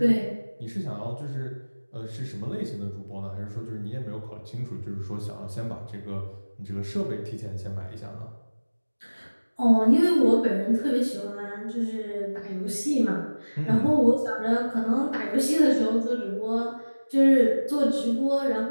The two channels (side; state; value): both; inverted; correlation -1.00